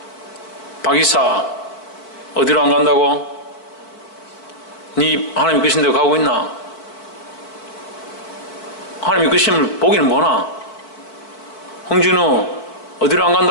박이사 어디로 안 간다고? 네 하나님 이끄신 대로 가고 있나? 하나님 이끄심을 보기는 뭐나? 홍진우 어디로 안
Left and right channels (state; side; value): late; right; 4.5 ms